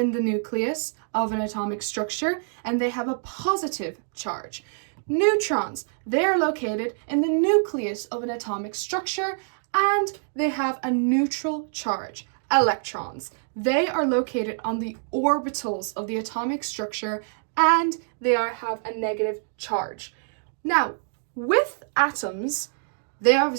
the nucleus of an atomic structure, and they have a positive charge. Neutrons, they are located in the nucleus of an atomic structure, and they have a neutral charge. Electrons, they are located on the orbitals of the atomic structure, and they have a negative charge. Now, with atoms, they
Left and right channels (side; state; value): left; silent; digital silence